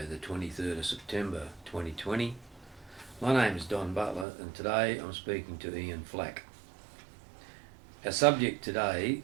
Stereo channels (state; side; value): drops out; left; at 4.2 s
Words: the 23rd of September 2020. My name is Don Butler and today I'm speaking to Ian Flack. Our subject today